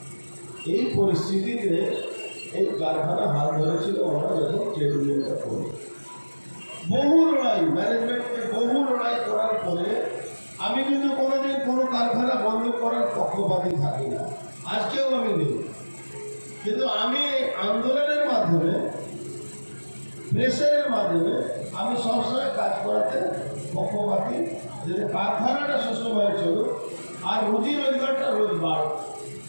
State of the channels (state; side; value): inverted; both; correlation -1.00